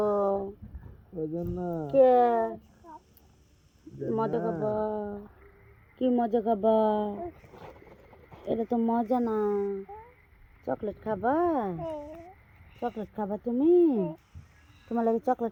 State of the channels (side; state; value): both; identical; correlation 1.00